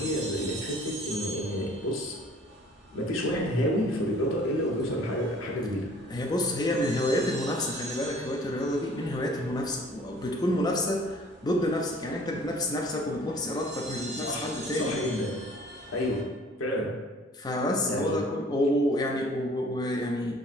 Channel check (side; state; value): both; normal; correlation 0.52